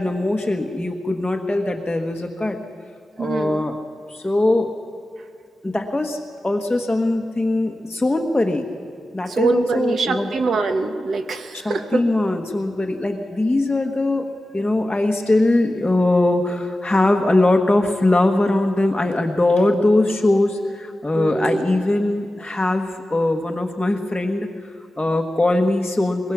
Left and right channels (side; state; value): both; normal; correlation 0.94